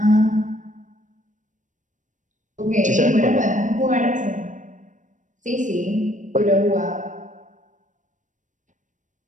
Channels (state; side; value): late; left; 0.37 ms